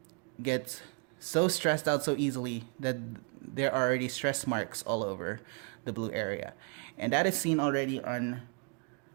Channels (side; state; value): left; quieter; 38.9 dB